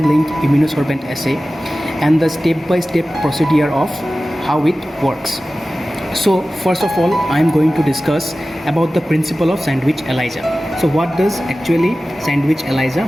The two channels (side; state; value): both; normal; correlation 0.96